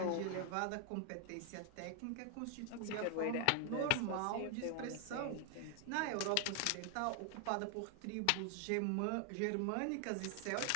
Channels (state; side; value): different; both; correlation 0.00